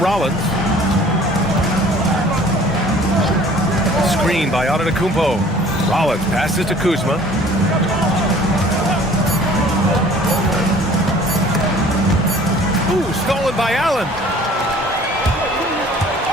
Screen by Antetokounmpo. Rollins passes to Kuzma. Ooh, stolen by Allen.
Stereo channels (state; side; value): normal; both; correlation 0.51